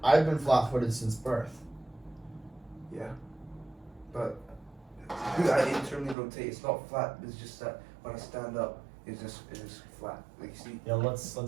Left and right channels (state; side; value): drops out; left; at 6.2 s